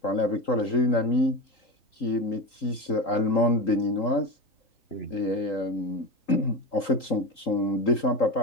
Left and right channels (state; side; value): late; right; 3.8 ms